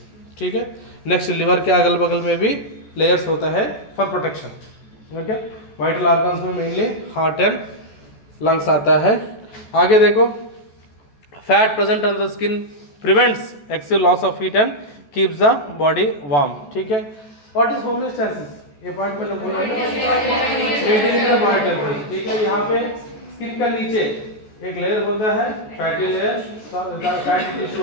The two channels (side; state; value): right; late; 14 ms